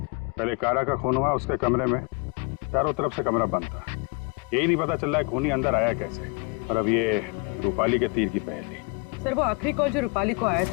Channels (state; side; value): quieter; right; 29.7 dB